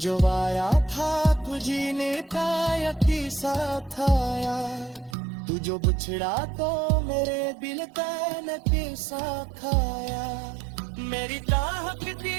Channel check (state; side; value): drops out; left; at 5.2 s